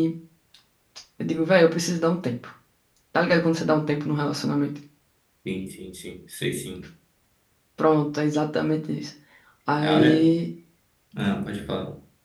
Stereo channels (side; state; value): both; identical; correlation 1.00